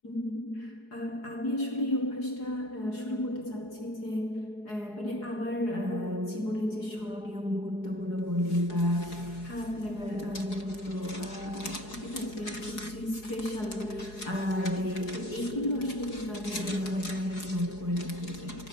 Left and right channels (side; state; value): right; late; 4.8 ms